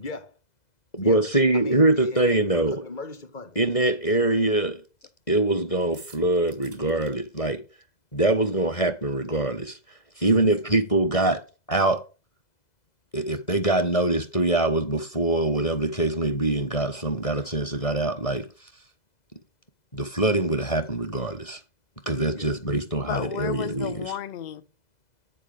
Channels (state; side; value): late; right; 1.6 ms